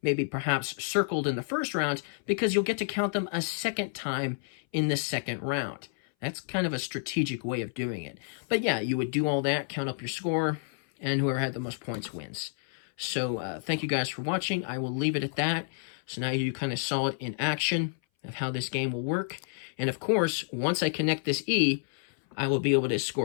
maybe perhaps circled in the first round, because you'll get to count them a second time in the second round. That's kind of a strategic way of doing it. But yeah, you would do all that, count up your score, and whoever had the most points wins. So thank you guys for watching. I will leave it at that. So now you kind of saw it in action of how this game will work. And of course, once I connect this E, I will be able to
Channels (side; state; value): right; silent; 58 dB below the other